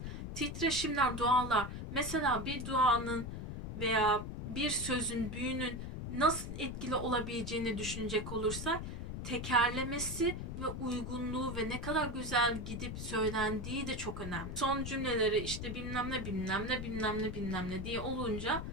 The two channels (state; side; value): noise; left; rumble, 6 dB below the sound